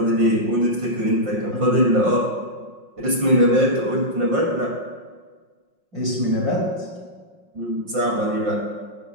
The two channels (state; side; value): late; left; 5.6 ms